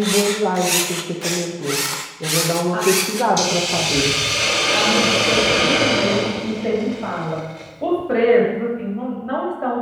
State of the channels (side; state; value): both; identical; correlation 1.00